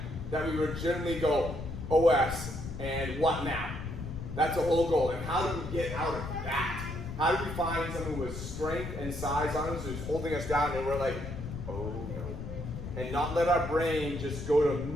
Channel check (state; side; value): noise; left; rumble, 8 dB below the sound